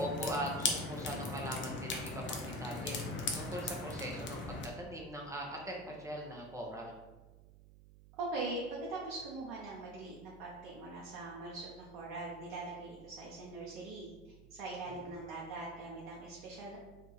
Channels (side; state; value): right; noise; hum, 18 dB below the sound